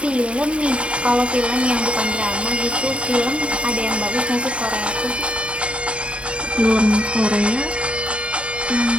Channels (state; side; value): late; left; 0.059 ms